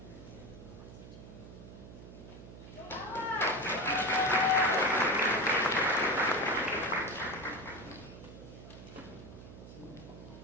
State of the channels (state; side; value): noise; right; hum, 15 dB below the sound